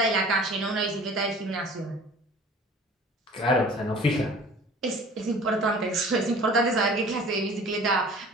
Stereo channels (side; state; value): both; normal; correlation 0.46